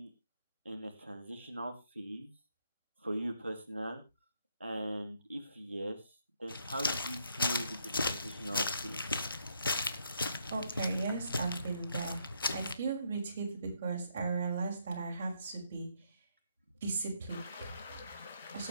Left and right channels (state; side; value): inverted; both; correlation -0.74